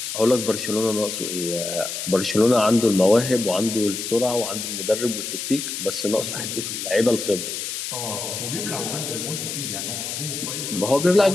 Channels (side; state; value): left; noise; hiss, 5 dB below the sound